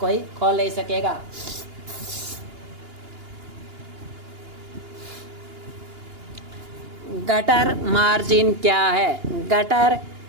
खोल नहीं सकेगा। गटर मार्जिन क्या है? गटर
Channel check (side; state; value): left; late; 2.8 ms